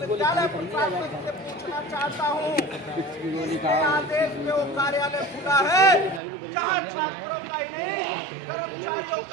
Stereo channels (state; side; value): drops out; left; at 6.2 s